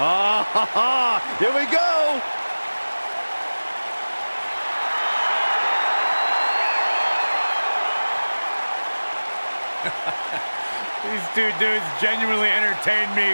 Here we go! These two dudes genuinely entertain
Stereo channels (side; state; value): both; inverted; correlation -1.00